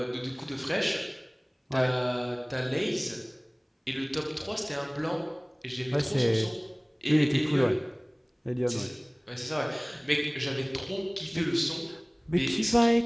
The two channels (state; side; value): identical; both; correlation 1.00